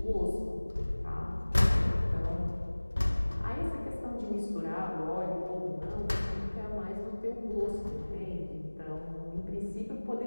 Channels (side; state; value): both; inverted; correlation -1.00